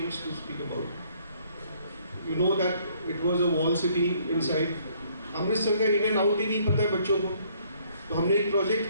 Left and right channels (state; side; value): inverted; both; correlation -0.63